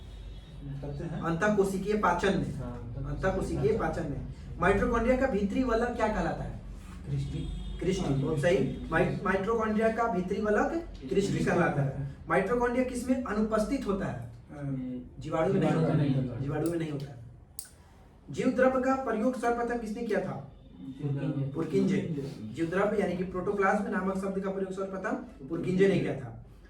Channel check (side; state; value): both; identical; correlation 1.00